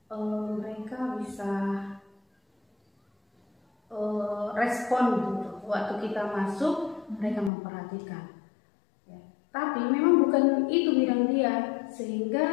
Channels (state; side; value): drops out; right; at 7.5 s